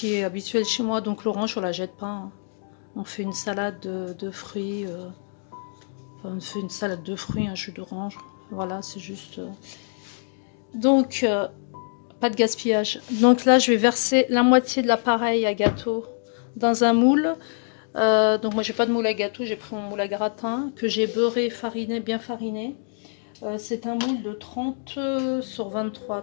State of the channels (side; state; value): right; silent; digital silence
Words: est habituel chez moi. Donc l'orange on la jette pas, hein. On fait une salade de fruits, enfin, on fait une salade de fruits, un jus d'orange, voilà, c'est juste donc pas de gaspillage. Donc là je vais verser la moitié de l'appareil à gâteau dans un moule. Donc moi j'ai pas de moule à gâteau, j'ai pris mon moule à gratin que j'ai beurré, fariné, bien fariné. C'est un moule de 30 sur 23,